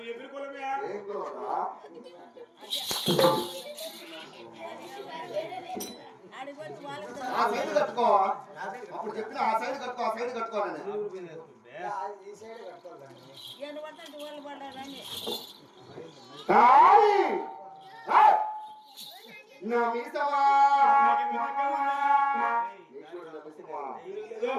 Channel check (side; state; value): both; identical; correlation 1.00